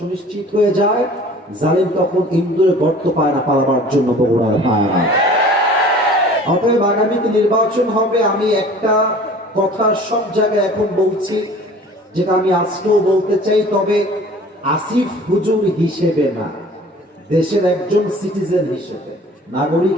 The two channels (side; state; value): both; normal; correlation 0.46